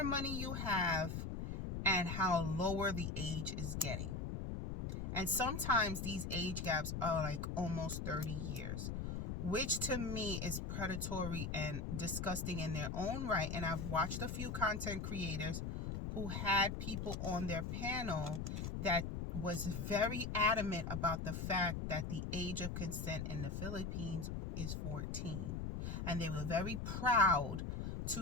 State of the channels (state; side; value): noise; left; rumble, 3 dB below the sound